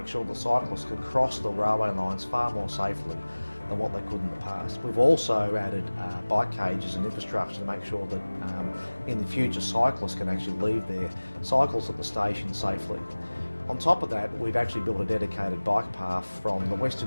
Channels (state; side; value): inverted; both; correlation -1.00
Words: sure that cyclists can cross the railway lines far more safely than what they could in the past. We've also added bike cages and infrastructure to make sure that in the future cyclists can actually leave their cycles at the station safely. On top of that, we've actually built a dedicated bike path from the